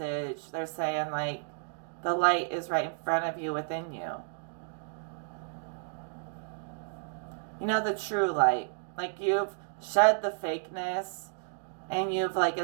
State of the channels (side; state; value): left; silent; digital silence